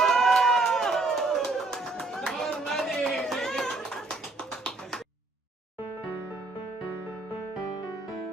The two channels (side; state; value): left; quieter; 3.4 dB